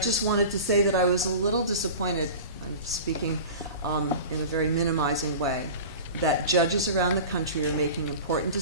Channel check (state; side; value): inverted; both; correlation -0.35